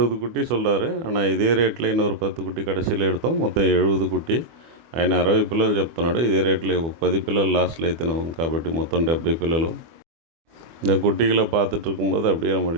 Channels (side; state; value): left; late; 24 ms